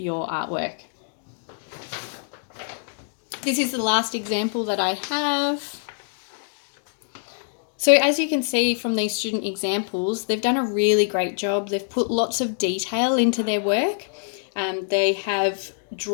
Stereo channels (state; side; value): silent; right; digital silence